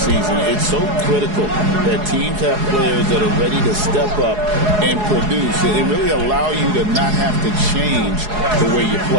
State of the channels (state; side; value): late; left; 4.8 ms